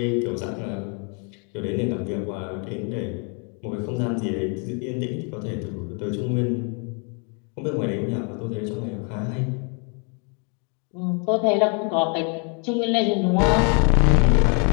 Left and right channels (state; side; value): quieter; right; 37.6 dB